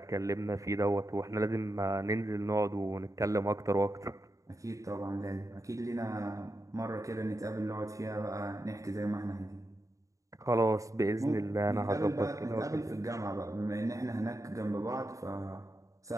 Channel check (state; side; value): late; left; 0.16 ms